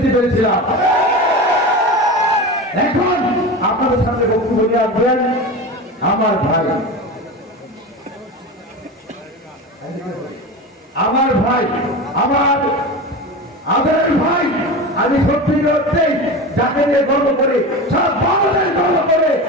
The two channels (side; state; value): both; normal; correlation 0.27